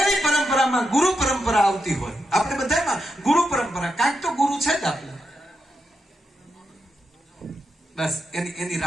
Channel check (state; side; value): normal; both; correlation 0.86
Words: પરંપરામાં ગુરુ પરંપરા આવતી હોય, આપણે બધામાં ગુરુ પરંપરા, કાંઈક તો ગુરુ છે જ આપણે. બસ એની